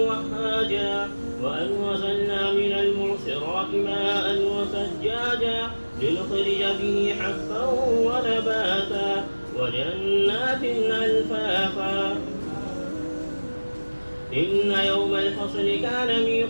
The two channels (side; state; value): both; inverted; correlation -1.00